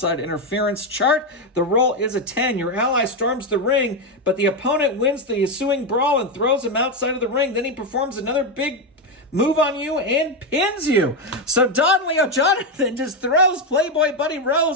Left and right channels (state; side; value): normal; both; correlation 0.08